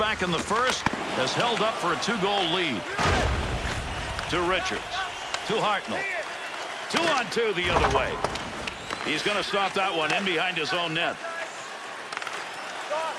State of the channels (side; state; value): both; identical; correlation 1.00